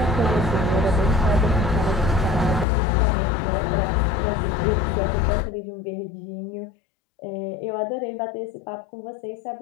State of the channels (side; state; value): right; drops out; at 2.7 s